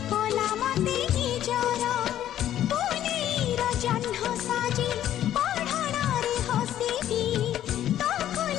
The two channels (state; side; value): quieter; right; 11.7 dB